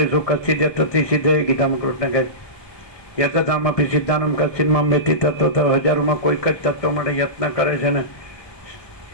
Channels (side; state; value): right; late; 1.2 ms